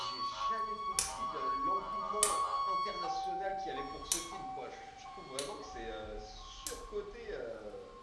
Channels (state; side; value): identical; both; correlation 1.00